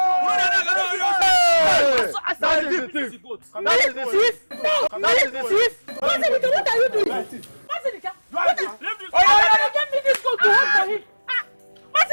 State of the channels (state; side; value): inverted; both; correlation -1.00